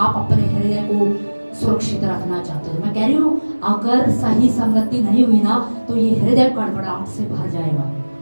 अपने हृदय को सुरक्षित रखना चाहते हो, मैं कह रही हूँ अगर सही संगति नहीं हुई ना, तो ये हृदय गड़बड़ाहट से भर जाएगा।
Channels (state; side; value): inverted; both; correlation -1.00